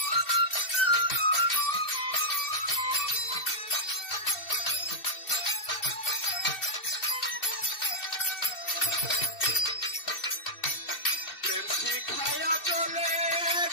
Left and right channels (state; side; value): late; right; 2.7 ms